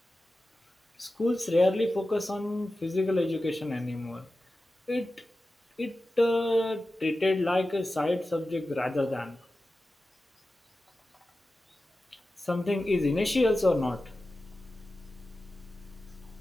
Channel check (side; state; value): both; normal; correlation 0.94